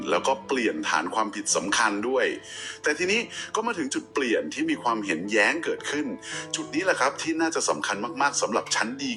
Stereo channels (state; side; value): identical; both; correlation 1.00